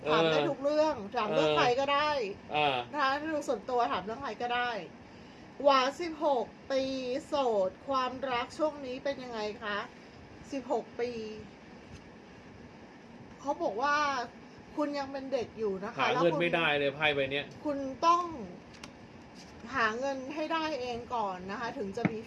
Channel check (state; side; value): identical; both; correlation 1.00